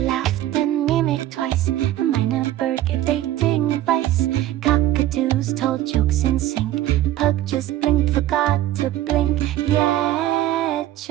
laughed and mimicked twice. A minor bird gave dating advice. Cockatoos told jokes in sync. Pug just blinked, forgot to blink. Yeah,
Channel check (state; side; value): quieter; left; 13.8 dB